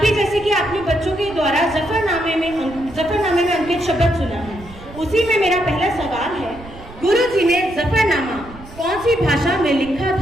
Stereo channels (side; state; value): right; noise; rumble, 17 dB below the sound